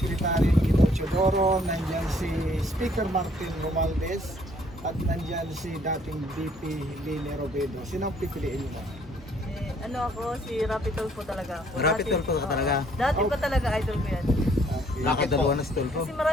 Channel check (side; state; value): both; normal; correlation 0.63